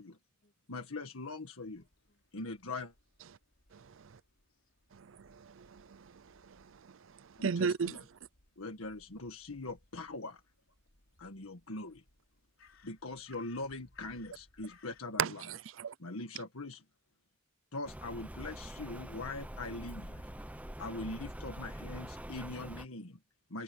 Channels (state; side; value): normal; both; correlation 0.12